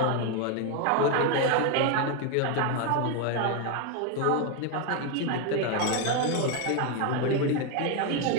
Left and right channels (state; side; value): different; both; correlation 0.01